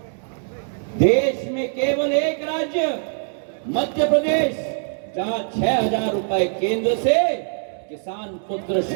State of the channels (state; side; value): silent; left; digital silence